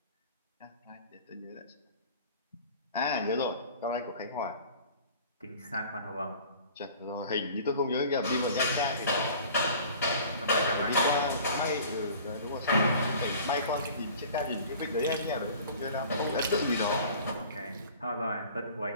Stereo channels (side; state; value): both; inverted; correlation -0.45